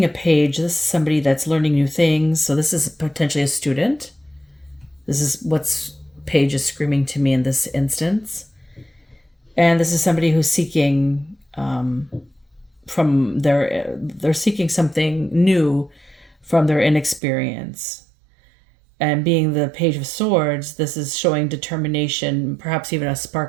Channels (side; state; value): left; drops out; at 17.2 s